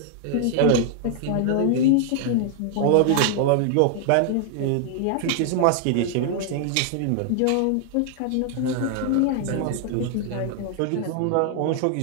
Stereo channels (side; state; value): both; different; correlation 0.00